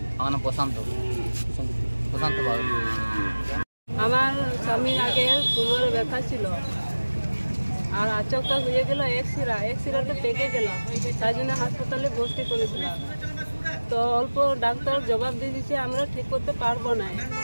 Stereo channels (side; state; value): both; inverted; correlation -1.00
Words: আমার নাম প্রশান্ত বাবু। আমার স্বামীর আগে কোমরে ব্যথা ছিল, আর আচমকা হয়ে গেল এক্সিরাতে পেকে গেল, তাই জন্য হাসপাতালে ভর্তি করেছিলাম। তো অল্প ডাক্তার জবাব দিয়ে দিচ্ছে আমরা ঠিক করতে পারবো না।